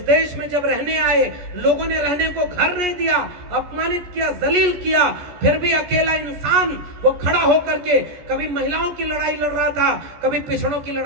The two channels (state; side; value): late; left; 14 ms